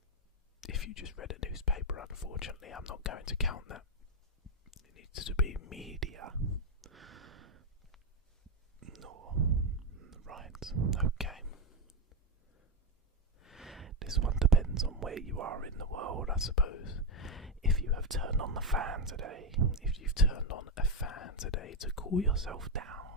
If you just read a newspaper, unfortunately, I'm not going to count that. It needs to be media. No. Right, okay. This one depends on where you are in the world, I suppose. If you have turned on the fan today, if you've turned on a fan today to cool yourself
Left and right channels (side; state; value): both; normal; correlation 0.05